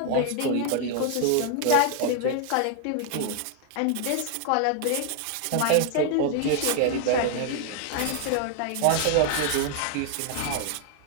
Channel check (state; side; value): different; both; correlation 0.00